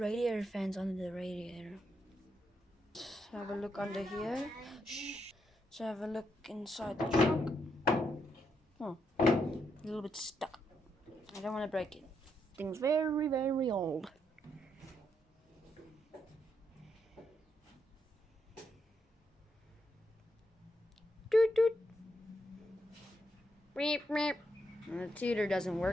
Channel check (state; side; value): normal; both; correlation 0.79